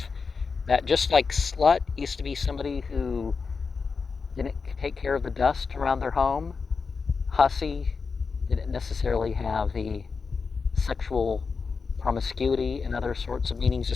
that just like slut used to be somebody who didn't take care of the dust around their home, hussy didn't necessarily have the sexual promiscuity and other sorts of meanings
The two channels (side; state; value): right; quieter; 5.0 dB